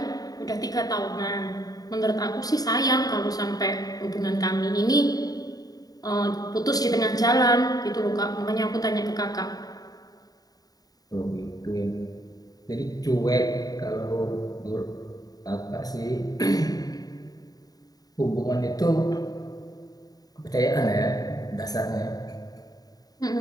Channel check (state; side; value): late; right; 0.18 ms